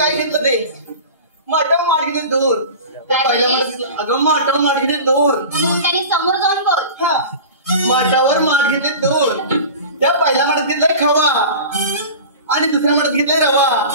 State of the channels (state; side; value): inverted; both; correlation -0.35